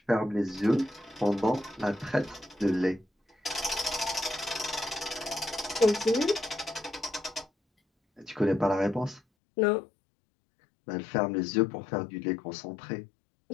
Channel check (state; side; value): drops out; right; at 9.2 s